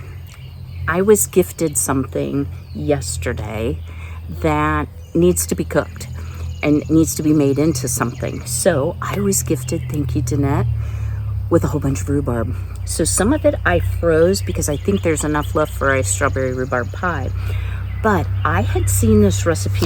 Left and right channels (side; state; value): both; identical; correlation 1.00